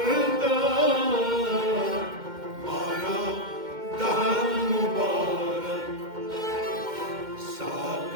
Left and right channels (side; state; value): left; late; 2.1 ms